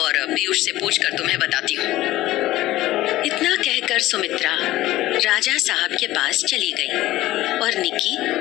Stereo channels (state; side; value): quieter; right; 16.2 dB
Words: पीयूष से पूछकर तुम्हें बताती हूँ। इतना कहकर सुमित्रा राजा साहब के पास चली गई और निकी